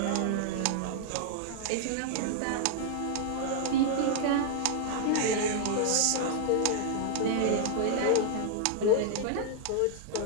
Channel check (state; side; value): different; both; correlation 0.00